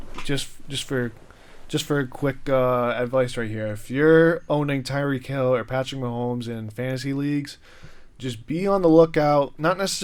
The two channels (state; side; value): identical; both; correlation 1.00